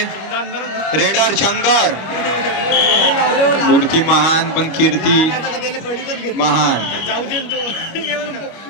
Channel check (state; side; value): late; right; 25 ms